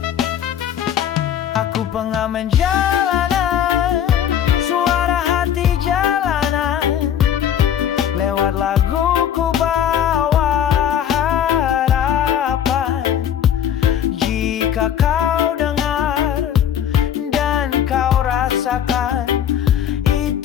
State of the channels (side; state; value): right; quieter; 9.7 dB